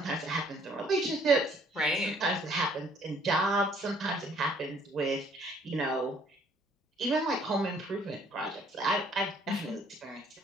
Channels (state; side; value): normal; both; correlation 0.61